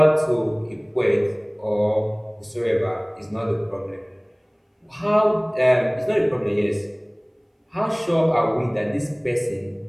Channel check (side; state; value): both; identical; correlation 1.00